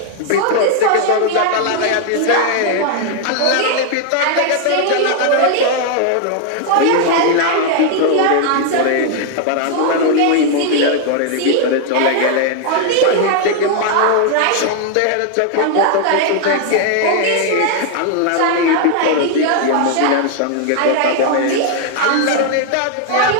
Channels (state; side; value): different; both; correlation 0.00